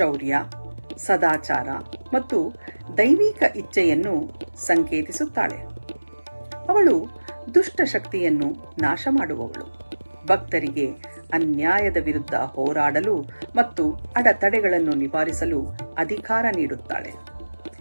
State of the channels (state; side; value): inverted; both; correlation -1.00